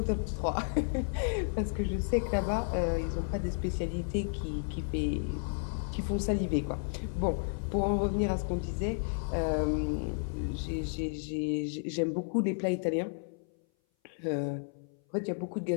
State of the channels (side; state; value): right; silent; 56 dB below the other